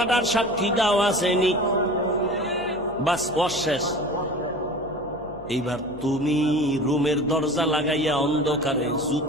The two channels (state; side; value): noise; left; hum, 20 dB below the sound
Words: সাক্ষী দাও আসেনি, বাস অশেষ। এইবার তুমি রুমের দরজা লাগাইয়া অন্ধকারে